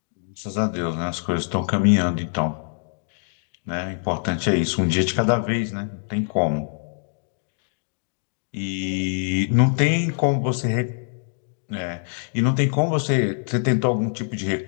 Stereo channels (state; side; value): silent; right; 63 dB below the other